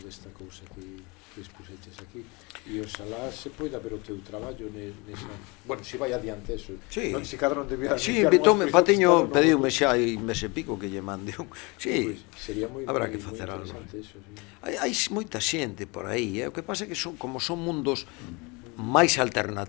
esta cousa que expuseches aquí, e oxalá se poida ver o teu traballo nesa... Bueno, se vai adiante eso, sí. Non se cadra non debía... Sí, invitoume, Patiño pediume xa hai mes e pico que lle mande un... Sí, sería moi habrá que facer algo. Eso, sí. Hai moita xente por aí, o que pasa é que como son mundos máis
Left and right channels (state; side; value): quieter; right; 27.6 dB